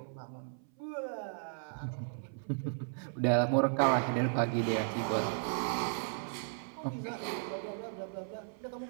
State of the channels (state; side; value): silent; left; 54 dB below the other